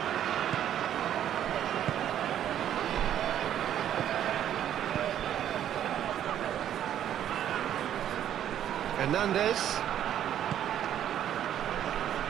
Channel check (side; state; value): left; quieter; 10.6 dB